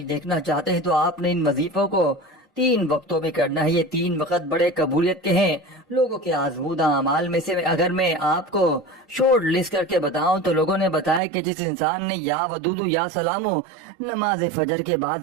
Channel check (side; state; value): left; drops out; at 11.2 s